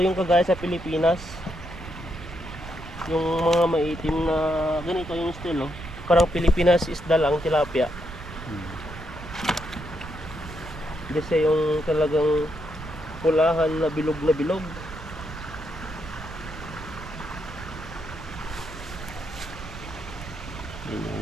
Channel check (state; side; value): noise; right; rumble, 13 dB below the sound